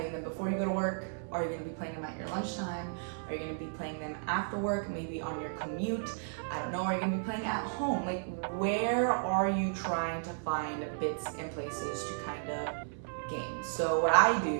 them before you go to work? Are you going to be playing them at your lunchtime? Are you going to be playing them after work, maybe on your commute? I don't know. Are you going to be playing at home? Like, where are you trying to find bits and places to kind of game? So what I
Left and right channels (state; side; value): silent; left; 55 dB below the other